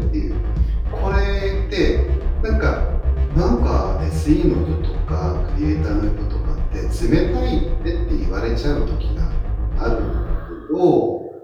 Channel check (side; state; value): both; identical; correlation 1.00